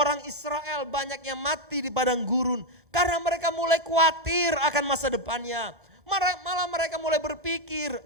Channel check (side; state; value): both; normal; correlation 0.03